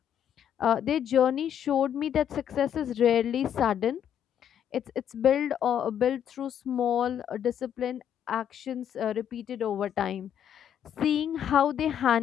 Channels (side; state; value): right; quieter; 9.4 dB